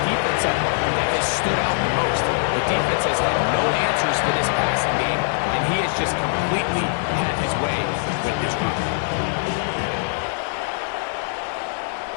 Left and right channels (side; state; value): right; silent; 64 dB below the other